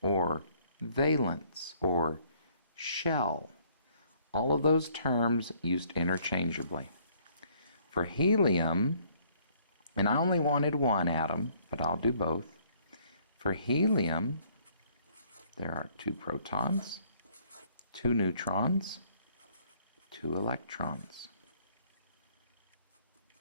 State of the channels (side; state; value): both; inverted; correlation -0.63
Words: or valence, or shell. All of those terms used interchangeably. For helium, and I only wanted 1 atom, but I'll do both. For helium, there are 2 protons, 2 neutrons, 2 electrons.